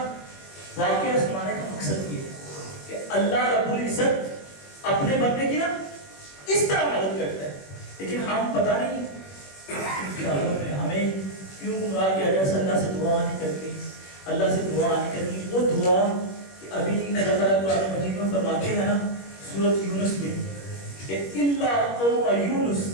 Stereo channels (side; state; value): right; late; 21 ms